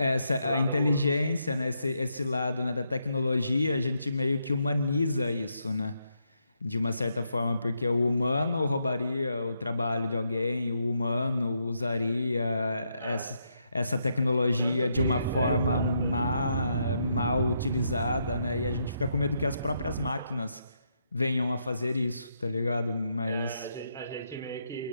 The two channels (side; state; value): both; inverted; correlation -0.79